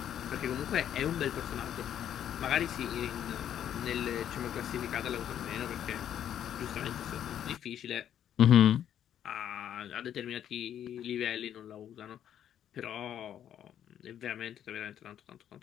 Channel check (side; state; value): right; quieter; 10.1 dB